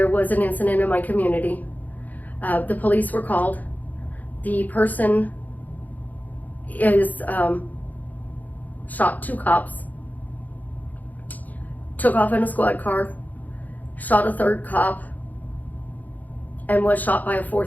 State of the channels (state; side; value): late; right; 0.081 ms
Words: was an incident in my community. The police were called. The person is shot 2 cops, took off in a squad car, shot a 3rd cop, and was shot by a